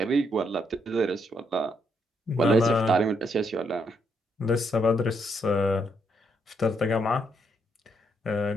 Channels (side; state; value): both; normal; correlation 0.75